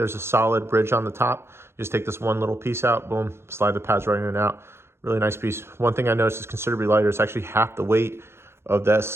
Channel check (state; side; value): late; left; 0.12 ms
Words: a solid bridge on the top. You just take this one little piece out, boom, slide the pads right in and out. Really nice piece. One thing I noticed is considerably lighter. It's actually half the weight of the